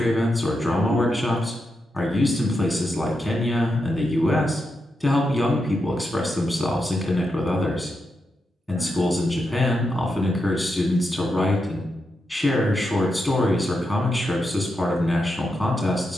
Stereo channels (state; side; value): normal; both; correlation 0.86